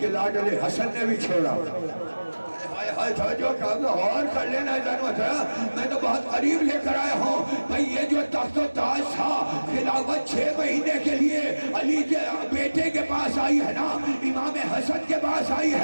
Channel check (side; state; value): both; inverted; correlation -1.00